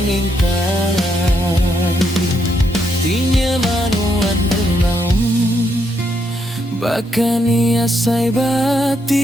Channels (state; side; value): normal; both; correlation 0.77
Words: intan. Tinya manuan renang, bahkan ia sai